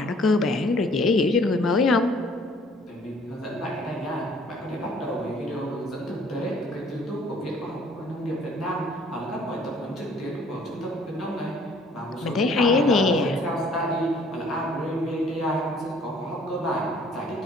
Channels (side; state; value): both; normal; correlation 0.57